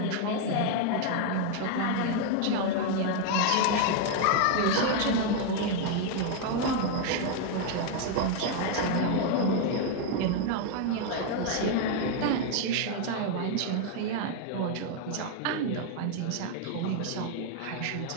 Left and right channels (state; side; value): different; both; correlation 0.00